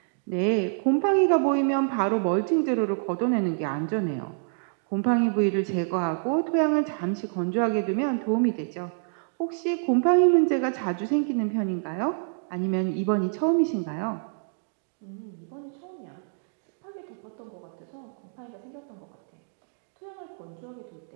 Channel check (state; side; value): silent; left; digital silence